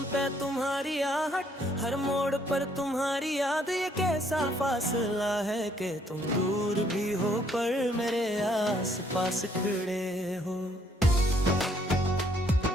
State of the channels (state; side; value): normal; both; correlation 0.67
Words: पे तुम्हारी आहट, हर मोड़ पर तुम्हारी याद, ये कैसा फासला है कि तुम दूर भी हो पर मेरे आस पास खड़े हो।